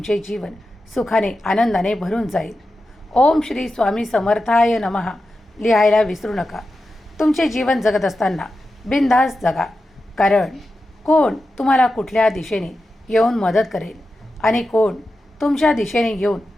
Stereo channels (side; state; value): both; normal; correlation 0.91